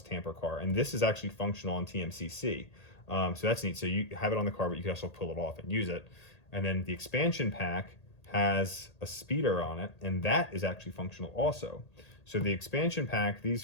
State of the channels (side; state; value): right; late; 1.8 ms